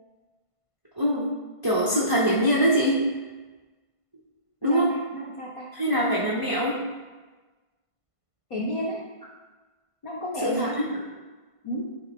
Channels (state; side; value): late; right; 1.5 ms